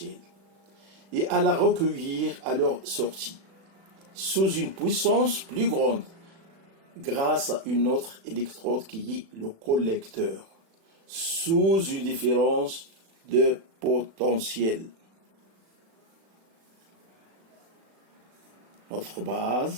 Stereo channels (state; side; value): late; left; 36 ms